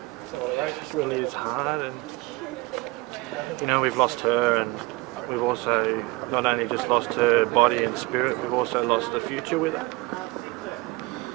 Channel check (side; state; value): left; quieter; 22.8 dB